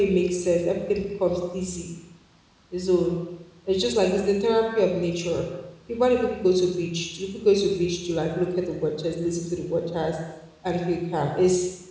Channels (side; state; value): both; identical; correlation 1.00